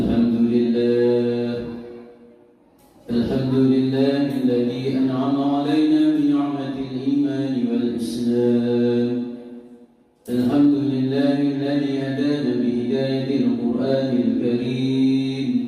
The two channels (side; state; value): both; identical; correlation 1.00